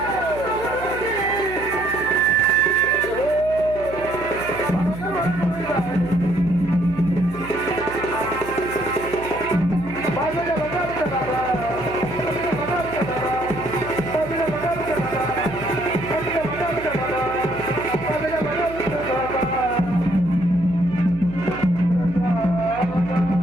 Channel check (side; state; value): right; noise; hum, 13 dB below the sound